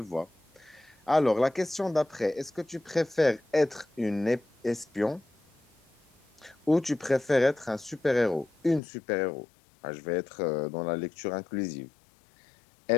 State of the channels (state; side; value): drops out; right; at 8.8 s